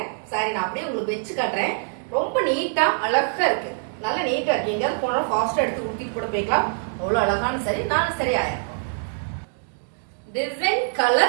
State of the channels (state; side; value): silent; left; digital silence